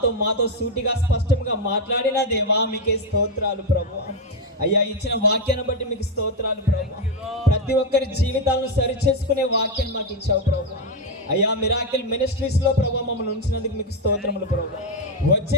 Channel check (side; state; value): both; normal; correlation 0.05